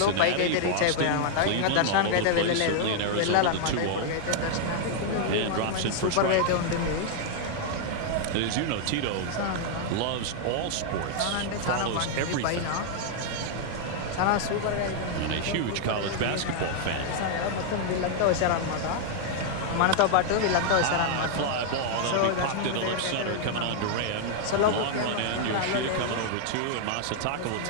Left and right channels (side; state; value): both; different; correlation -0.01